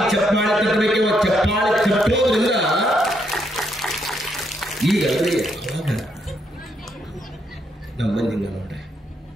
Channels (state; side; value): normal; both; correlation 0.76